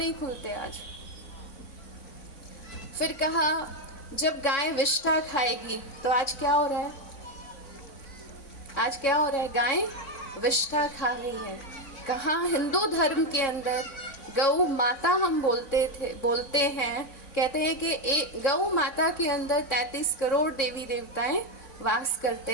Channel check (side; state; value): right; late; 3.6 ms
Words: खुलते आज। फिर कहा जब गाय विष्ठा खाएगी, तो आज क्या हो रहा है? आज क्या हो रहा है? गाय विष्ठा खा रही है। कहाँ हिंदू धर्म के अंदर गौ माता हम बोलते हैं, कहते हैं कि गौ माता के अंदर 33 करोड़ देवी देवताएं वास